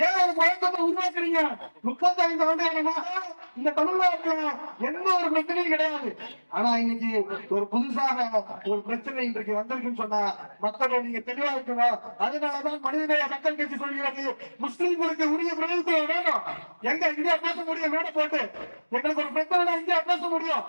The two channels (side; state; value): both; inverted; correlation -1.00